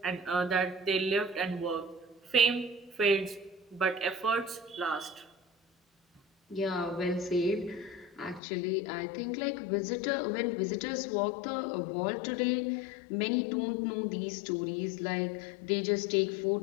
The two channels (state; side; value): drops out; right; at 8.4 s